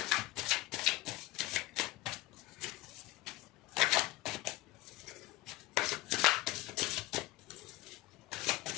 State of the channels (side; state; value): right; quieter; 17.3 dB